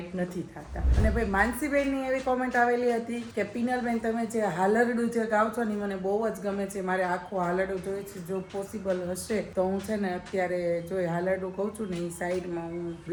નથી થતા. અને ભાઈ માનસીબેનની એવી કોમેન્ટ આવેલી હતી કે પિનલબેન તમે જે હાલરડું જે ગાવ છો ને મને બહુ જ ગમે છે, મારે આખું હાલરડું જોઈએ છે. જો પોસિબલ હશે તો હું છે ને અત્યારે જો હાલરડું કહું છું ને એ સાઈડમાં હું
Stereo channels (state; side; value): identical; both; correlation 1.00